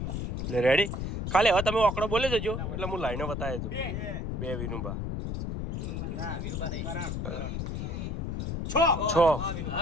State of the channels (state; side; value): noise; left; rumble, 3 dB below the sound